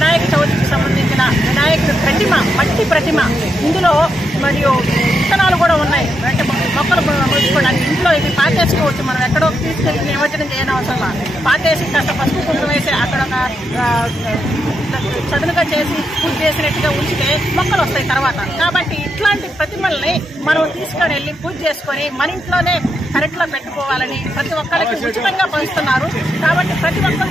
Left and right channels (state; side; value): normal; both; correlation 0.82